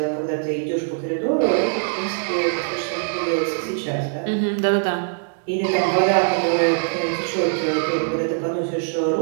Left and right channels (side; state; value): left; silent; digital silence